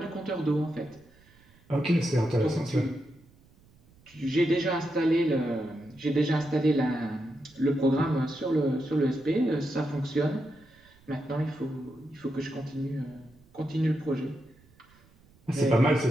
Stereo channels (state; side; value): noise; right; rumble, 29 dB below the sound